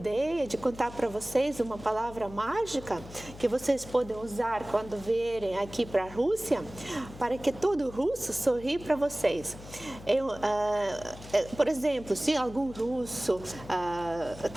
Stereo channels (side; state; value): left; noise; hum, 16 dB below the sound